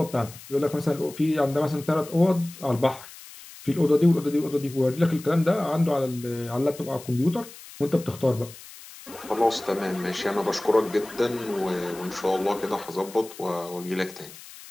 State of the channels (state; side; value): noise; left; hiss, 17 dB below the sound